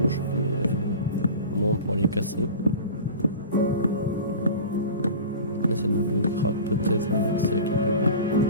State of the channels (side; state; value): both; inverted; correlation -0.35